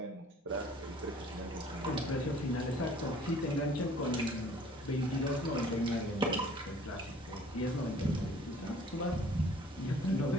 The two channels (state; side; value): normal; both; correlation 0.54